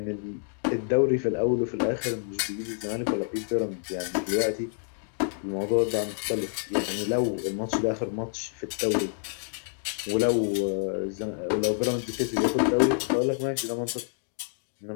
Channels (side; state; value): right; silent; digital silence